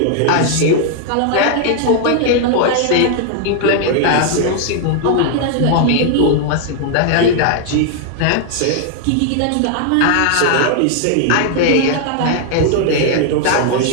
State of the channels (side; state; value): both; different; correlation 0.00